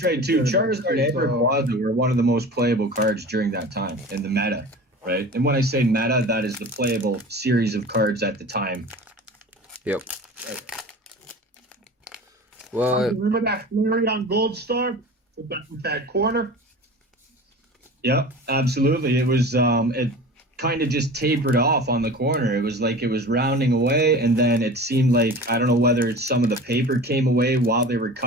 right too. Charizard and Rayquaza were one of the most playable cards during that time in the meta, right? And when I say meta, that is the playable series of cards at the time. Yep. Well, remember that Flareon Gold Star with that corner? Yep, absolutely. It was it kind of just tapered off on the corner. It was like it was rounding away, and then it seemed like, I don't know whether some of the paper came away while they were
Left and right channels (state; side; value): normal; both; correlation 0.37